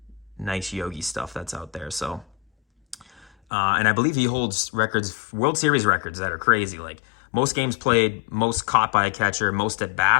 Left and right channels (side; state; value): right; drops out; at 3.3 s